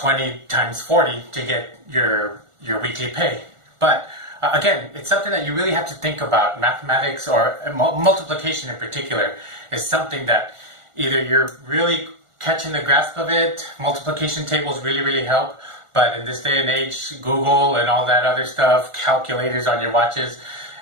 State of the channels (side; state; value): left; late; 1.4 ms